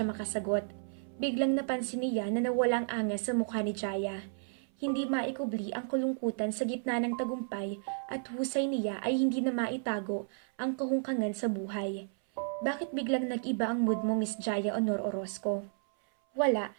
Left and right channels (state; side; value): silent; left; 56 dB below the other